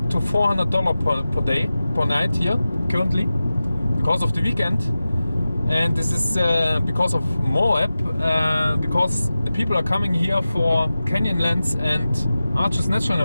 to $400 per night here currently because of the weekend. And this is because of Moab, because the people are coming here for Canyonlands and Arches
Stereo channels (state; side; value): inverted; both; correlation -0.95